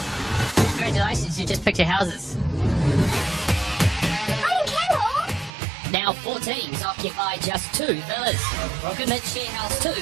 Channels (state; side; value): drops out; left; at 5.5 s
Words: Congratulations, you just picked your houses. I didn't care. Now 4 teams occupy just 2 villas. Rocketman share house 2